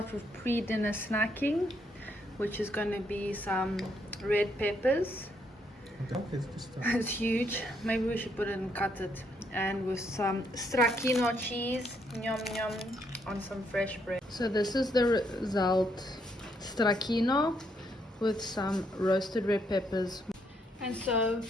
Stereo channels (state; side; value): normal; both; correlation 0.74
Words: with pre-dinner snacking, which is going to be some red peppers. It's huge. Maybe we should put it and cut it. And with some stracchino cheese, yum yum, on some fresh bread. So this is the result: stracchino with some roasted red peppers. And so